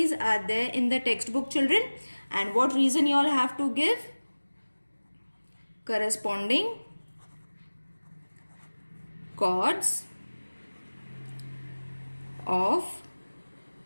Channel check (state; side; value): inverted; both; correlation -1.00